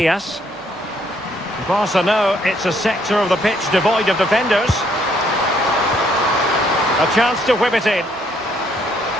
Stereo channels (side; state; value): both; normal; correlation 0.68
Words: Barca know it's a sector of the pitch devoid of defenders. A chance to whip it in.